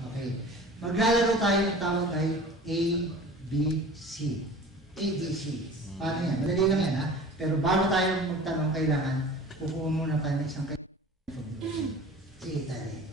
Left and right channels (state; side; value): normal; both; correlation 0.41